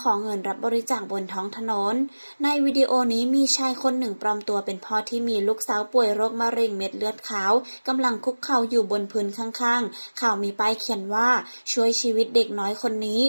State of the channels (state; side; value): inverted; both; correlation -1.00